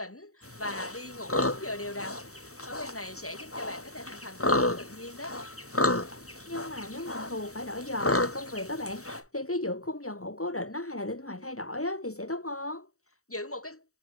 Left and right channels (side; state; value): right; late; 0.64 ms